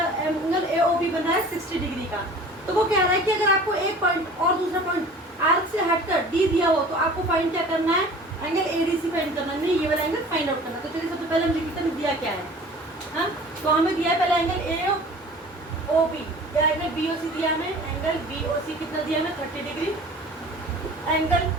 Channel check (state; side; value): normal; both; correlation 0.44